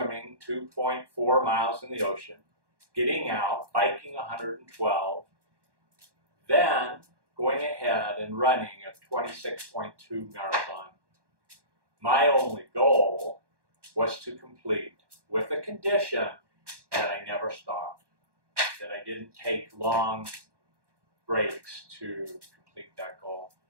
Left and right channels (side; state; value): left; late; 1.1 ms